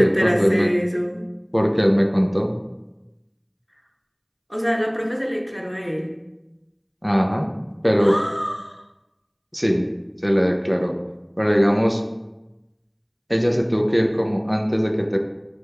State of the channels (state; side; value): identical; both; correlation 1.00